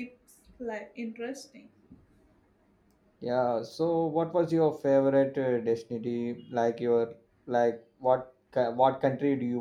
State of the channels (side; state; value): both; identical; correlation 1.00